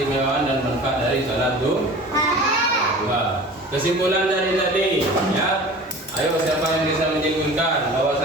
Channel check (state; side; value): normal; both; correlation 0.40